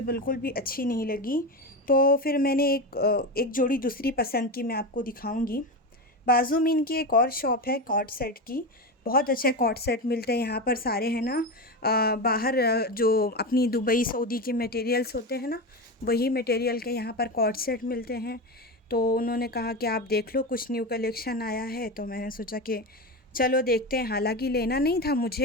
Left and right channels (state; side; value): normal; both; correlation 0.19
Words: बिल्कुल भी अच्छी नहीं लगी। तो फिर मैंने एक जोड़ी दूसरी पसंद की, मैं आपको दिखाऊंगी। बाजू में इनकी एक और शॉप है कॉर्ड सेट की, बहुत अच्छे कॉर्ड सेट मिलते हैं यहाँ पर सारे, है ना। बाहर जो अपनी दुबई सऊदी के मटेरियल्स होते हैं ना, वही मटेरियल के यहाँ पर कॉर्ड सेट मिलते हैं। तो उन्होंने कहा कि आप देख लो, कुछ न्यू कलेक्शन आया है। तो मैंने सोचा कि चलो देखते हैं। हालांकि लेना नहीं था